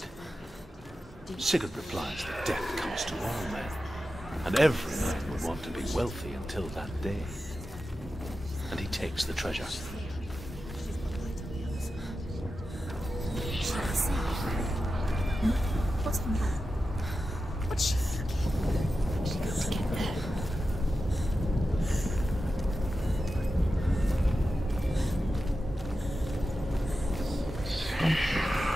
Sigurd replies that death comes to all men, and every man would want to be wealthy until that day. And he takes the treasure. What's she thinking? She got to get there.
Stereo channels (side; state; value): both; normal; correlation 0.92